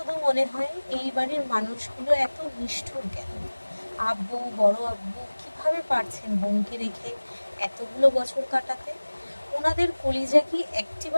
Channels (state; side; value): inverted; both; correlation -1.00